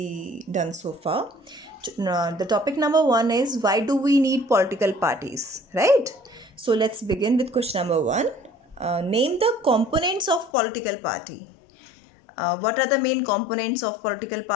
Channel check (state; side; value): drops out; right; at 10.5 s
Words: done so far. The topic number 1 is, why do we need political parties, right? So let's begin with question number 1. Name the components of political party. What are the main components of political